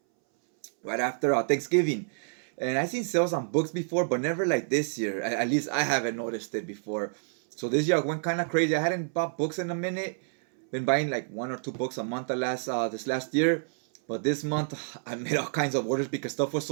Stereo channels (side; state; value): left; silent; 59 dB below the other